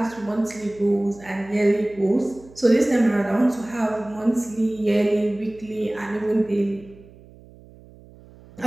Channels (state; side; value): noise; right; hum, 23 dB below the sound